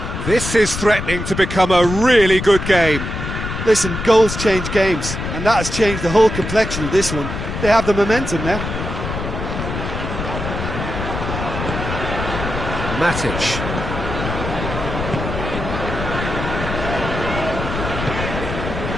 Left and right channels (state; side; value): noise; left; rumble, 5 dB below the sound